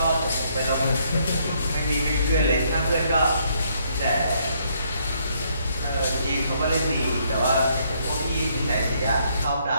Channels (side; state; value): both; inverted; correlation -0.70